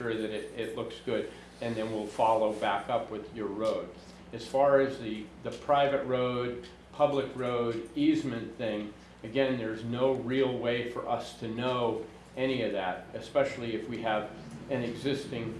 that it looks good, and then we'll follow back up with your road. As far as the private road, public road, easement thing, again, there's no real way for us to know any of that, especially if we have an existing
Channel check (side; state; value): both; identical; correlation 1.00